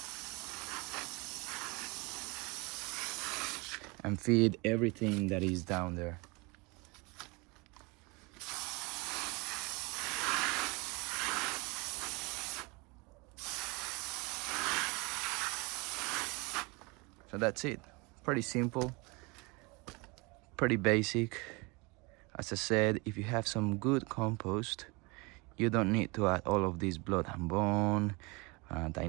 and feed everything that is down there. So that's it. Pretty simple, pretty basic. As I said, if you have some good compost, you don't need to add all of this blood and bone,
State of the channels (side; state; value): left; quieter; 27.4 dB